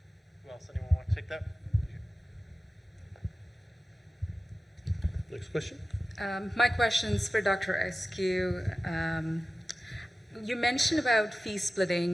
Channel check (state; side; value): normal; both; correlation 0.95